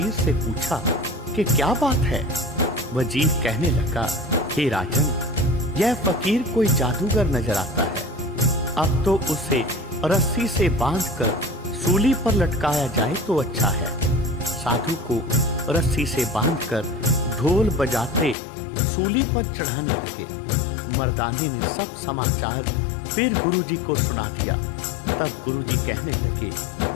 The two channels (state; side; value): drops out; right; at 18.4 s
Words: से पूछा कि क्या बात है। वजीर कहने लगा, हे राजन, यह फकीर कोई जादूगर नजर आता है। अब तो उसे रस्सी से बांधकर सूली पर लटकाया जाए तो अच्छा है। साधु को रस्सी से बांधकर ढोल बजाते सूली पर चढ़ाने लगे। मर्दाने ने सब समाचार फिर गुरुजी को सुना दिया। तब गुरुजी कहने लगे,